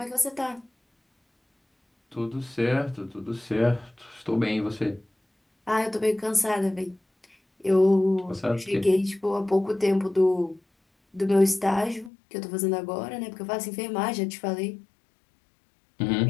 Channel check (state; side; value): drops out; right; at 12.1 s